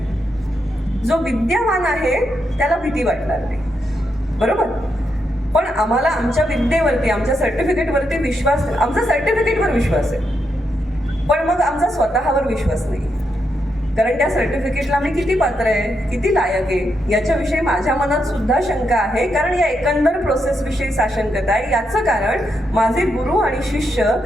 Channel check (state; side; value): normal; both; correlation 0.82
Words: जो विद्यावान आहे त्याला भीती वाटणार नाही, बरोबर. पण आम्हाला आमच्या विद्येवरती, आमच्या सर्टिफिकेटवरती विश्वास, आमचा सर्टिफिकेटवर विश्वास आहे, पण मग आमचा स्वतःवर विश्वास नाही. कारण त्या सर्टिफिकेटला मी किती पात्र आहे, किती लायक आहे याच्याविषयी माझ्या मनात सुद्धा शंका आहे. कारण या एकंदर प्रोसेसविषयी साशंकता आहे. याचं कारण माझे गुरु आणि शिष्य